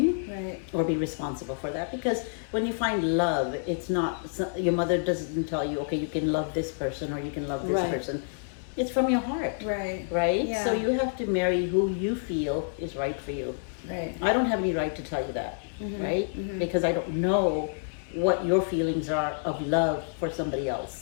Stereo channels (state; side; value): silent; right; digital silence